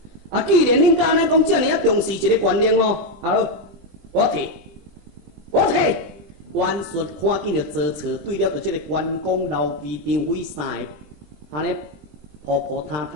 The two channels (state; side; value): late; left; 20 ms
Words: 啊，既然恁家呢讲遮尔啊重视一个官令哦，啊好，我替。袁术看见着做错，对了着这个关公、刘备、张飞三个，安尼扑扑塌